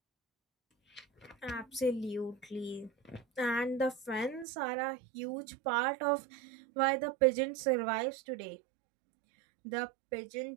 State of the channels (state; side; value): drops out; left; at 4.5 s